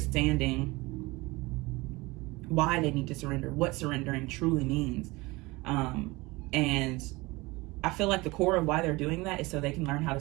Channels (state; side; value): quieter; left; 22.7 dB